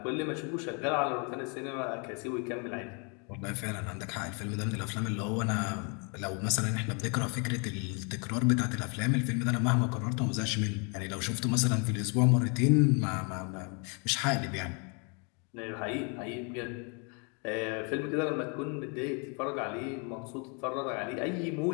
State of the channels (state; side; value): quieter; right; 35.5 dB